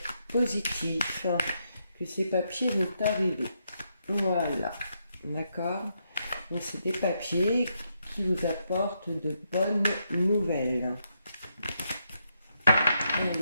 positif, que ces papiers vont arriver. Voilà, d'accord? Donc c'est des papiers qui vous apportent de bonnes nouvelles.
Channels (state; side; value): inverted; both; correlation -0.79